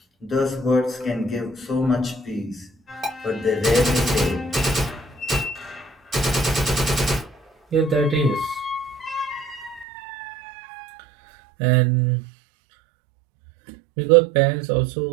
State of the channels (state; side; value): drops out; left; at 9.9 s